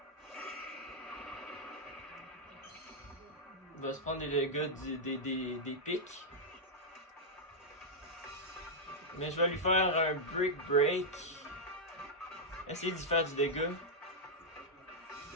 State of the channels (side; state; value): both; normal; correlation -0.06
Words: Il va se prendre des dégâts des pics. Mais je vais lui faire un Brick Break. Essayer d'y faire du dégât.